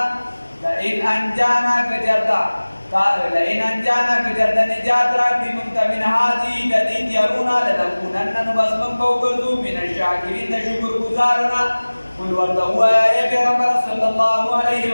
لئن انجانا که چېرته نجات راکړي موږ ته من هذه د دې اختیارونه لنکونن نو بس من به وګرځو من الشاکرین د شکر ګزارونه قل ورته ووایه ای پیغمبر صلی الله علیه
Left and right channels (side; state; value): both; inverted; correlation -1.00